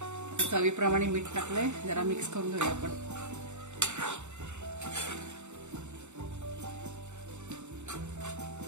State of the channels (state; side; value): late; left; 0.83 ms